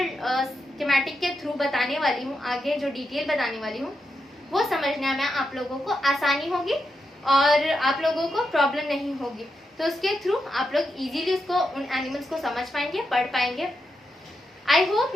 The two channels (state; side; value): normal; both; correlation 0.85